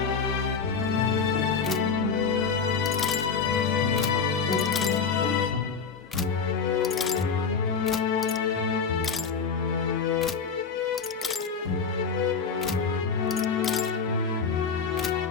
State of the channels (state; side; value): quieter; right; 5.6 dB